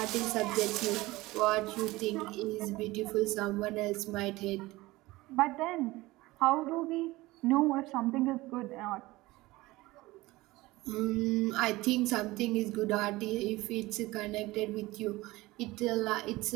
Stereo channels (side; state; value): left; quieter; 19.7 dB